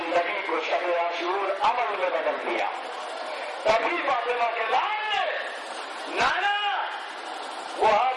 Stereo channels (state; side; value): identical; both; correlation 1.00